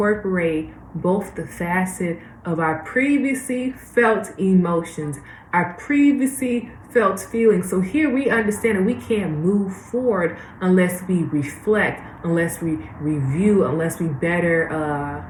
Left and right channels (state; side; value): identical; both; correlation 1.00